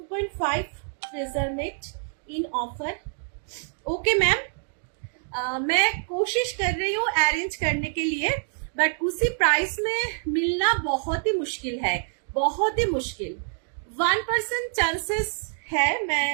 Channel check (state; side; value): silent; left; 61 dB below the other